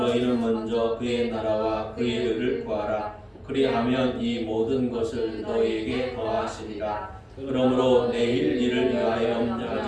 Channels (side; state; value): both; identical; correlation 1.00